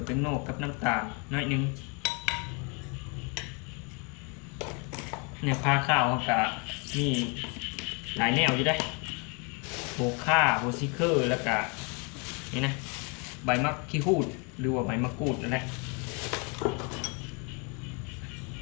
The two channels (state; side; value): quieter; right; 33.7 dB